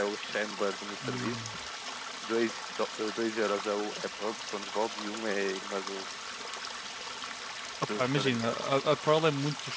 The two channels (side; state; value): both; identical; correlation 1.00